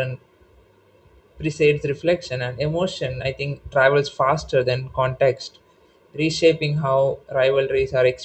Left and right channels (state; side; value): identical; both; correlation 1.00